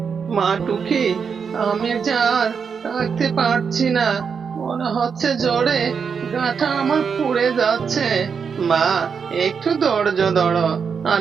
মা টুকি, আমি যে আর থাকতে পারছি না, মনে হচ্ছে জ্বরে গাটা আমার পুড়ে যাচ্ছে। মা, একটু ধৈর্য ধরো,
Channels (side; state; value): left; quieter; 6.2 dB